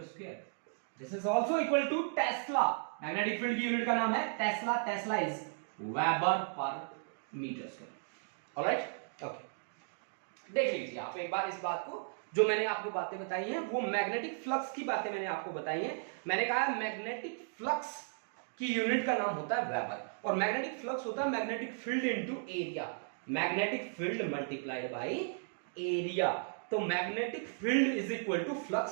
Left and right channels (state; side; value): silent; left; digital silence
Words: square. This is also equal to tesla. Magnetic field की यूनिट का नाम है tesla. Tesla is weber per metre square. Alright, okay. देख लीजिए आप एक बार इस बात को, जो मैंने आपको बातें बताई हैं वो मैग्नेटिक फ्लक्स की बातें मैंने आपको बताई हैं। मैंने कहा मैग्नेटिक फ्लक्स की यूनिट का नाम होता है वेबर, और मैग्नेटिक फ्लक्स होता है magnetic field into area. Magnetic field multiplied by area. तो magnetic field is equal to